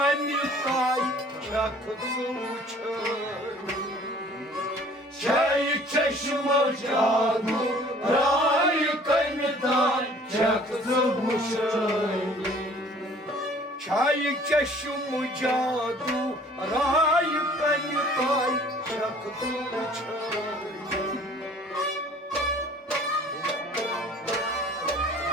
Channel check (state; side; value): normal; both; correlation 0.52